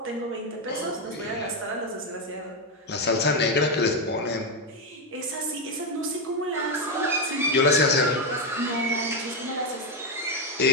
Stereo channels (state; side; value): normal; both; correlation 0.06